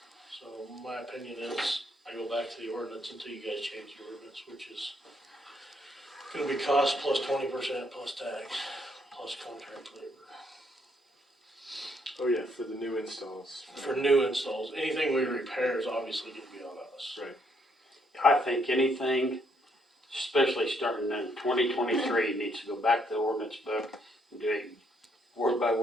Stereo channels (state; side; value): normal; both; correlation 0.71